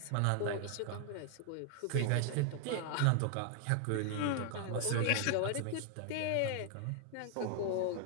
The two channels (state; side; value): different; both; correlation 0.00